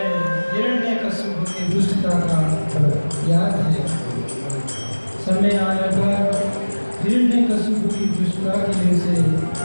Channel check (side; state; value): both; inverted; correlation -1.00